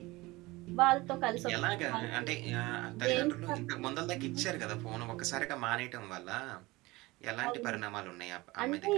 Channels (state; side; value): quieter; left; 21.3 dB